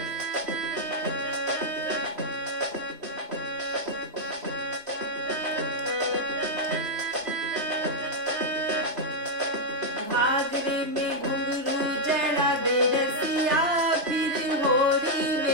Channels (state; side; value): late; left; 3.4 ms